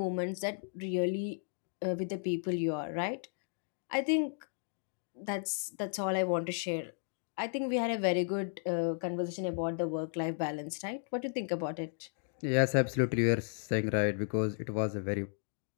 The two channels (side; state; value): right; silent; digital silence